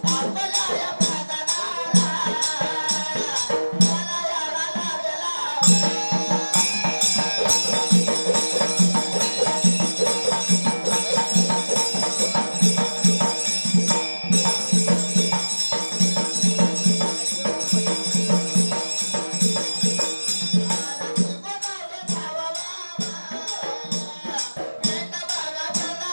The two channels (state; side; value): inverted; both; correlation -1.00